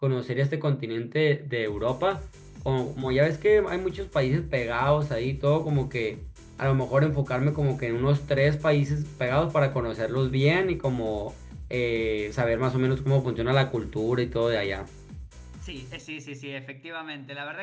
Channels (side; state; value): both; identical; correlation 1.00